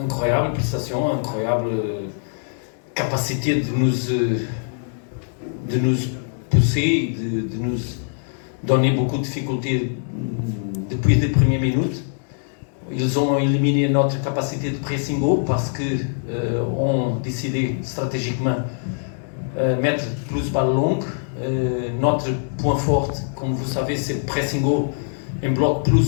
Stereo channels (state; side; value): silent; right; digital silence